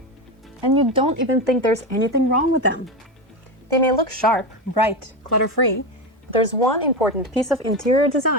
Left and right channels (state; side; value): normal; both; correlation 0.17